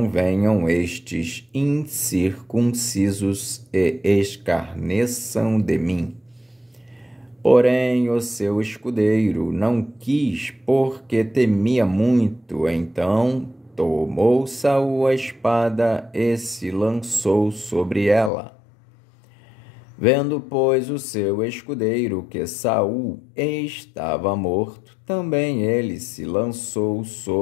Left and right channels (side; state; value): right; drops out; at 18.3 s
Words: venham estes incircuncisos e escarneçam de mim. Porém, o seu escudeiro não quis, porque temia muito. Então tomou Saul a espada e se lançou sobre ela. Vendo, pois, o seu escudeiro que Saul estava morto, também ele se lançou